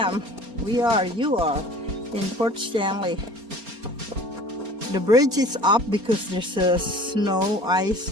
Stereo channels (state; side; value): late; left; 4.3 ms